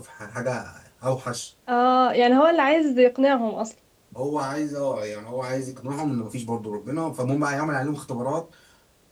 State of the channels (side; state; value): both; identical; correlation 1.00